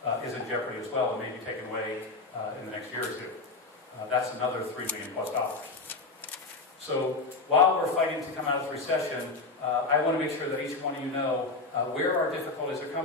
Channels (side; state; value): right; quieter; 3.6 dB